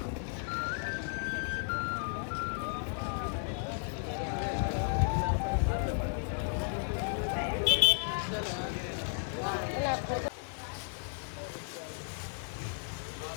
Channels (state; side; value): silent; right; 55 dB below the other